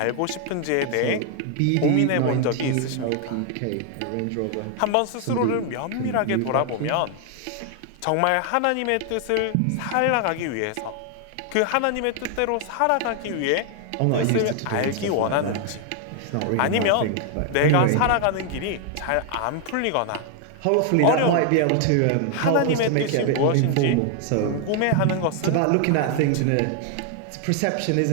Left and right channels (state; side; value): different; both; correlation 0.00